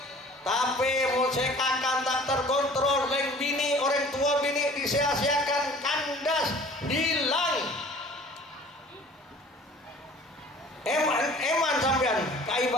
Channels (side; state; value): both; normal; correlation 0.48